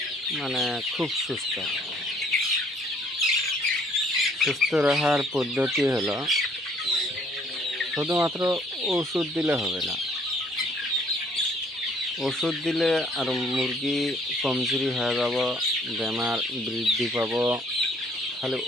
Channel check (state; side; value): normal; both; correlation 0.62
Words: খুব সুস্থ রাখার পদ্ধতি হলো শুধুমাত্র ওষুধ দিলে হবে না। ওষুধ দিলে আর মুরগি কমজোরি হয়ে যাব, বেমার বৃদ্ধি পাব। খালি